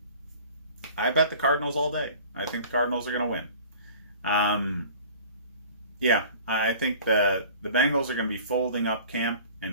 I bet the Cardinals all day. I think the Cardinals are going to win. I think the Bengals are going to be folding up camp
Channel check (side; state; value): both; inverted; correlation -0.45